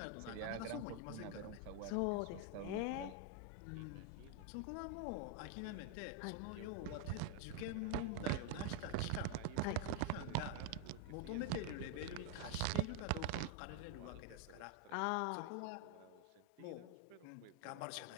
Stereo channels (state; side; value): different; both; correlation 0.00